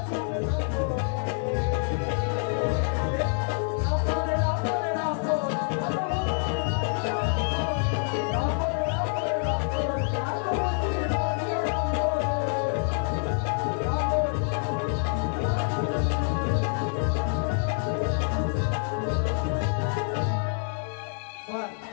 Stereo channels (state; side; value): silent; right; 60 dB below the other